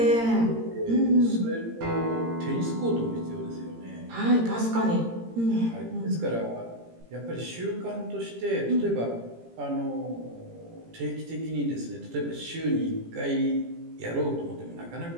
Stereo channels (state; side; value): late; left; 17 ms